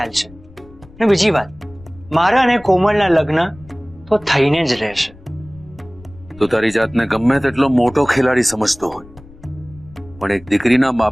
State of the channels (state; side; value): noise; left; rumble, 22 dB below the sound